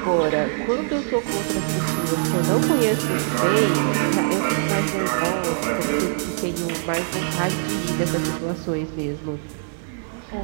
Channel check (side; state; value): left; silent; 64 dB below the other